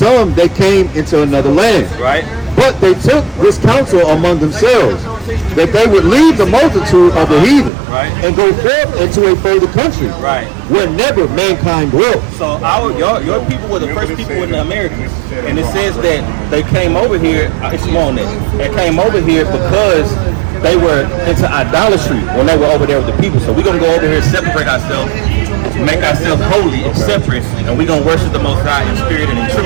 they came into another land. Right. But they took this counsel among themselves, that they would leave the multitude of the heathen, right, and go forth into a further country, right, where never mankind dwelt. So your people were the first people in the Americas, and it says that they came over here. It's on it. They came over here because they were into idolatry when they were over there with the people. So we're gonna go over here, separate ourselves, make ourselves holy and separate, and we're gonna worship the Most High in spirit and in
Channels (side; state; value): left; drops out; at 7.7 s